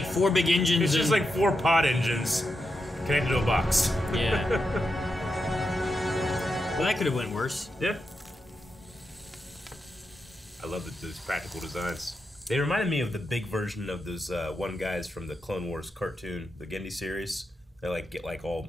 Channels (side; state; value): both; normal; correlation 0.86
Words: 4 big engines. It's just and- like 4 pod engines connected to a box. Yeah. Well, that could have went worse. Yeah. I love those practical designs. They reminded me of the big version of those one guys from the Clone Wars cartoon, the Gendy series. They like get like all